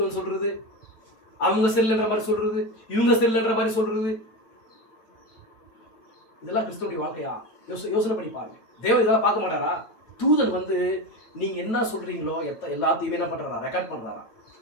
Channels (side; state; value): right; late; 8.9 ms